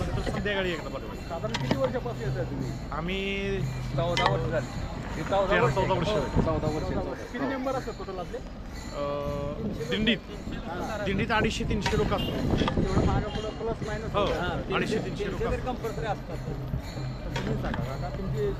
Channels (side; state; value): both; identical; correlation 1.00